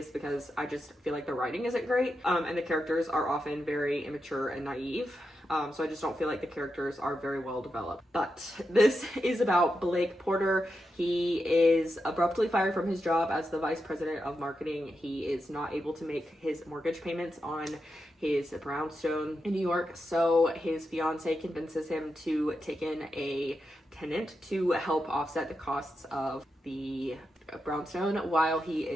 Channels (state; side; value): normal; both; correlation 0.87